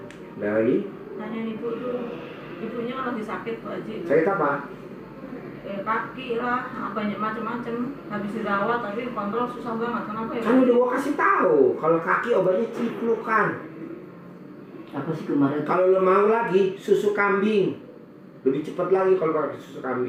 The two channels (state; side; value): identical; both; correlation 1.00